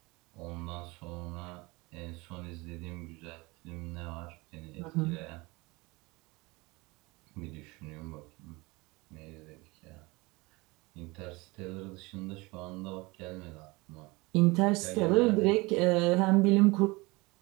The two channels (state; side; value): quieter; left; 24.0 dB